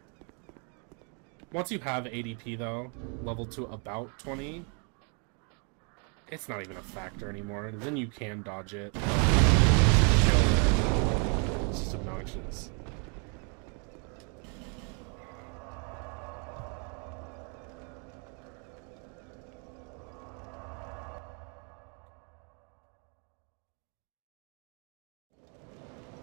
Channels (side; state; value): left; quieter; 37.7 dB